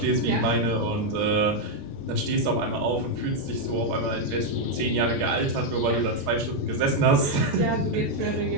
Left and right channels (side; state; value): left; late; 14 ms